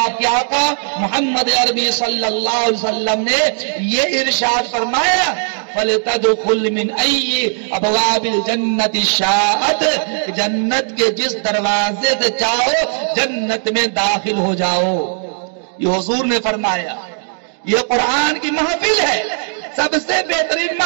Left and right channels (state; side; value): silent; left; 65 dB below the other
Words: کے آقا محمد عربی صلی اللہ علیہ وسلم نے یہ ارشاد فرمایا، فَلْتَدْخُلْ مِنْ أَيِّ أَبْوَابِ الْجَنَّةِ شَاءَتْ، جنت کے جس دروازے سے چاہو جنت میں داخل ہو جاؤ۔ یہ حضور نے فرمایا۔ یہ قرآن کی محفل ہے، سب سے بہترین